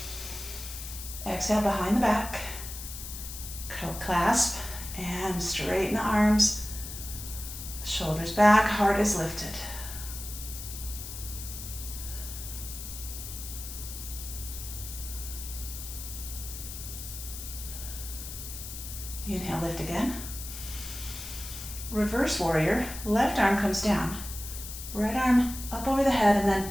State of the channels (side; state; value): left; noise; hiss, 9 dB below the sound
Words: Exhale, behind the back. Clasp and straighten the arms. Shoulders back, heart is lifted. Inhale, lift again. Reverse warrior, left arm comes down. Right arm up over the head, and then